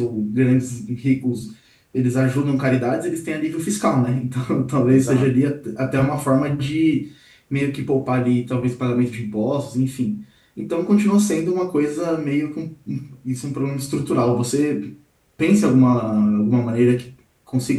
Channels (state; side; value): identical; both; correlation 1.00